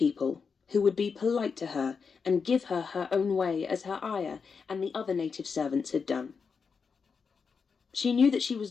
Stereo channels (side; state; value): right; quieter; 5.5 dB